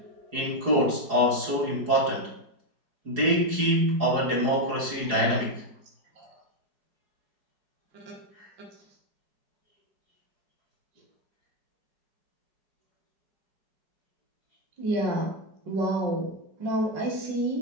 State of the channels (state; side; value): late; left; 4.8 ms